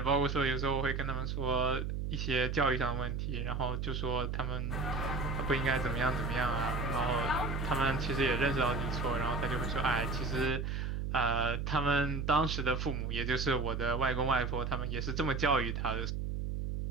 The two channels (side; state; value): right; noise; hum, 2 dB below the sound